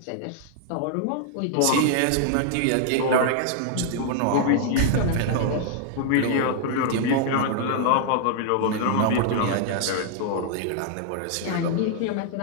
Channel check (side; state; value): both; different; correlation -0.01